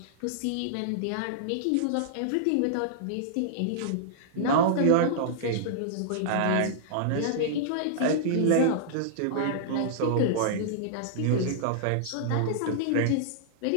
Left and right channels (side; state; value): both; different; correlation -0.02